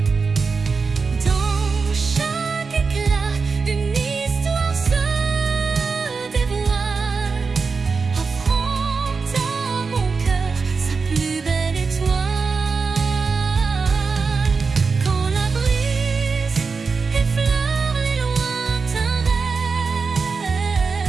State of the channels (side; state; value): left; quieter; 4.8 dB